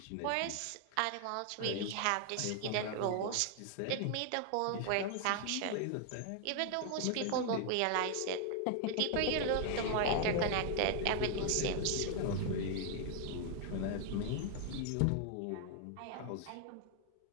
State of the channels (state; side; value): different; both; correlation 0.00